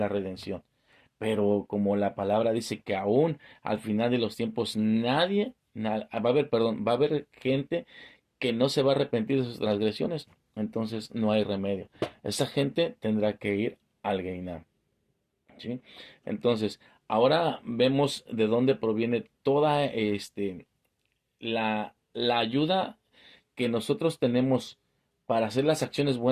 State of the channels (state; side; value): identical; both; correlation 1.00